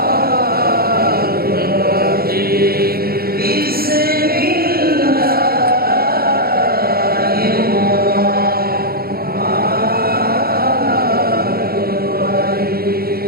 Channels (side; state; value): left; late; 0.44 ms